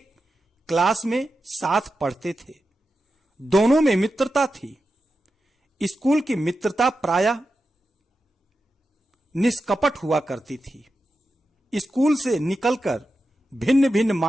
क्लास में साथ पढ़ते थे। दोनों में मित्रता थी। स्कूल की मित्रता प्रायः निष्कपट हुआ करती थी। स्कूल से निकलकर भिन्न भिन्न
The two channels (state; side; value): normal; both; correlation 0.90